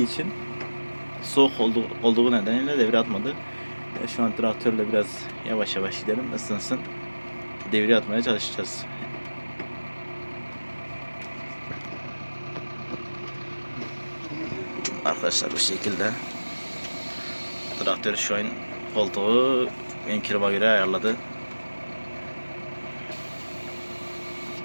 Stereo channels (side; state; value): both; inverted; correlation -1.00